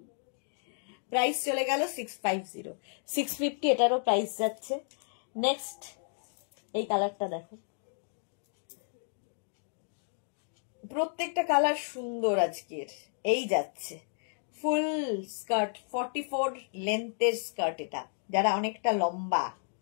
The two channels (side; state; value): right; silent; digital silence